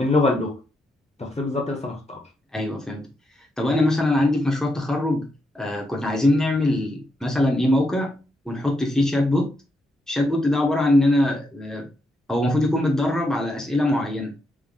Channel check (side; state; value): both; normal; correlation 0.81